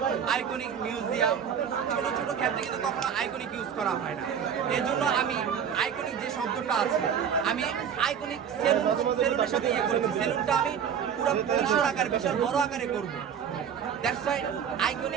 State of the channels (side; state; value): left; quieter; 7.9 dB